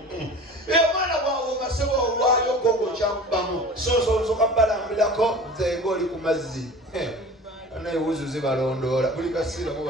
Mwana bwawo masebo olwayo gogo kyakubamu. So kabalambirako nze ng'oli ku mazzi. Naye wuzu zibalondoola buli kasiira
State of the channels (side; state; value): both; normal; correlation 0.39